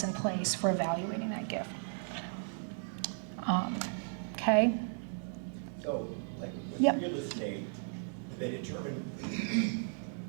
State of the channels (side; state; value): left; silent; digital silence